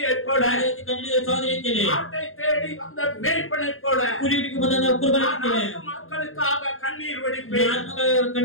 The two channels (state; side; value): late; right; 0.60 ms